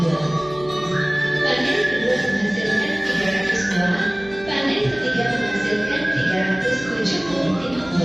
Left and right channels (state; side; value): noise; right; hum, 19 dB below the sound